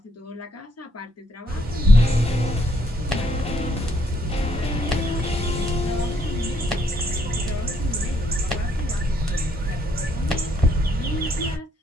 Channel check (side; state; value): both; normal; correlation 0.70